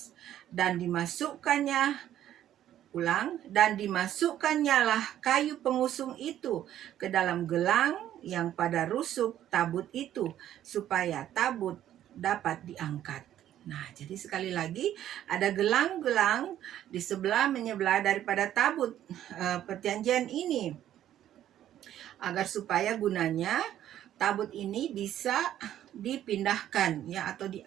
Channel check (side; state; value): left; quieter; 11.7 dB